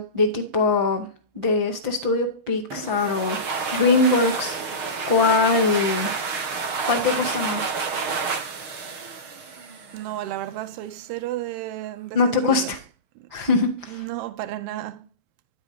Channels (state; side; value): late; left; 6.5 ms